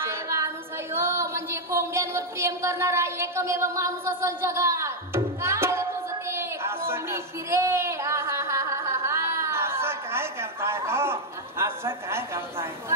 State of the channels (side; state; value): both; normal; correlation 0.00